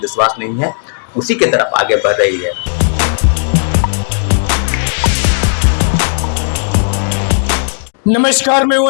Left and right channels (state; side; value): silent; right; digital silence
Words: नहीं है, उसी की तरफ आगे बढ़ रही है। नमस्कार, मैं हूं